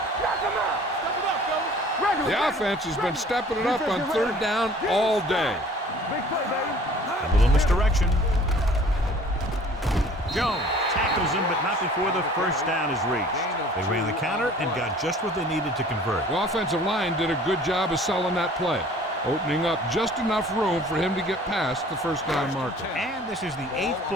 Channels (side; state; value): both; normal; correlation 0.50